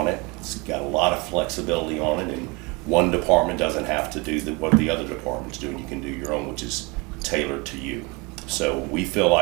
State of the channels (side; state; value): left; quieter; 27.2 dB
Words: it. It's got a lot of flexibility on it, and one department doesn't have to do what the other departments do, and you can do your own, which is tailored to you. So we feel